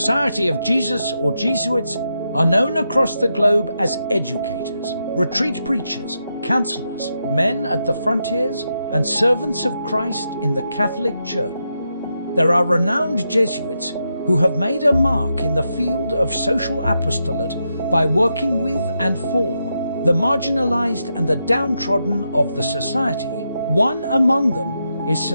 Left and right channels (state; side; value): inverted; both; correlation -0.84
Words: of Jesus or Jesuits are known across the globe as educators, retreat preachers, counselors, men at the frontiers, and servants of Christ in the Catholic Church. There are renowned Jesuits who have made a mark in the field of social apostolate by working with and for the marginalized and the downtrodden of the society. One among them is